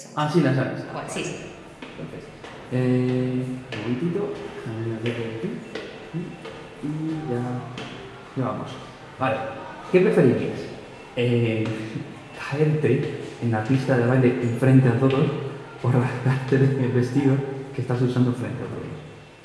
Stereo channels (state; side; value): identical; both; correlation 1.00